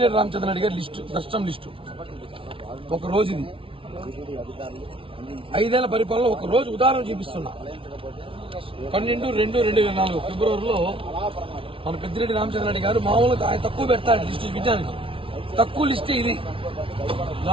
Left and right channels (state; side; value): late; left; 0.26 ms